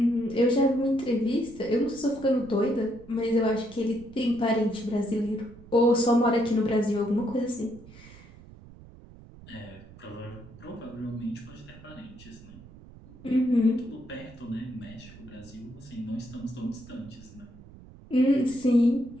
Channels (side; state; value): right; noise; rumble, 20 dB below the sound